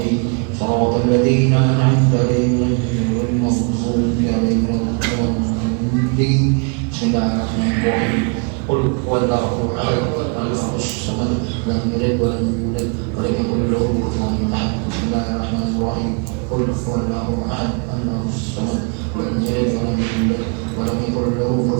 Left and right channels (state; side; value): quieter; left; 35.5 dB